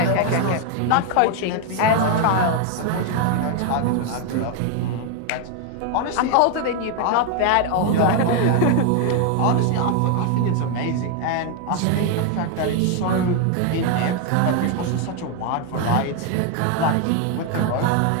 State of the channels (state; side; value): different; both; correlation 0.01